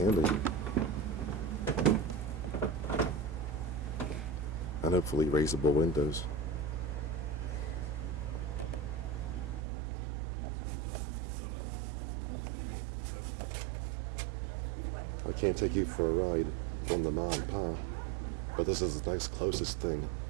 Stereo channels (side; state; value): left; drops out; at 9.6 s